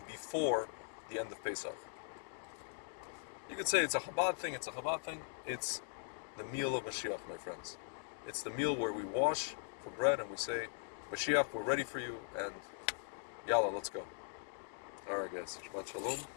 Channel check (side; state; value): right; silent; digital silence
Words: before the end of Pesach. You could say it's a Chabad thing. It's the meal of Mashiach, my friends. It's the meal where we wash for bread and we say, Mashiach, we're ready for you, and Yalla, let's go. All right, guys. Shabbat Shalom.